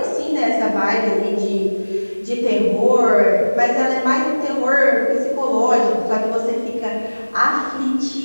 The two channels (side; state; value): both; inverted; correlation -1.00